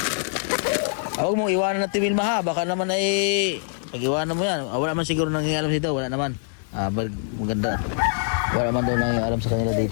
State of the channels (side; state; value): right; silent; 63 dB below the other